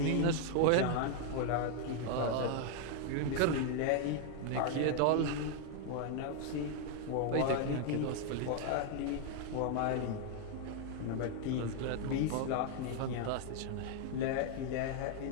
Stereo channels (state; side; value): different; both; correlation 0.00